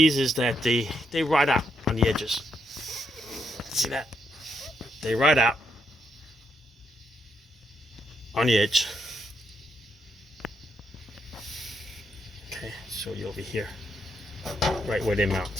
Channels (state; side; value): normal; both; correlation 0.78